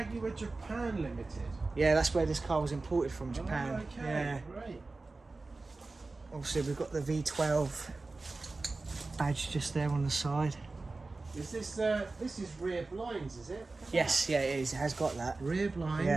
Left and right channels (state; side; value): quieter; left; 3.5 dB